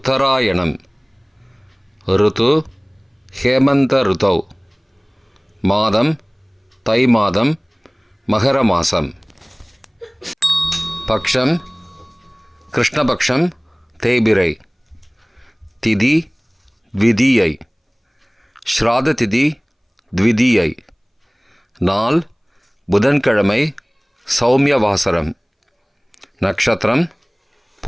ருது ஹேமந்த ருதௌ. மாதம் தை மாதம், மகர மாசம். பக்ஷம் கிருஷ்ணபக்ஷம், தேய்பிரை. திதி த்விதீயை. ஸ்ராத திதி த்விதீயை. நாள் புதன்கிழமை, சௌமியவாசரம். நட்சத்திரம்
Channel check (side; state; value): both; identical; correlation 1.00